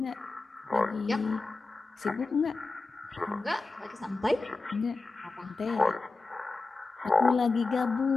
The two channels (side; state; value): right; quieter; 3.5 dB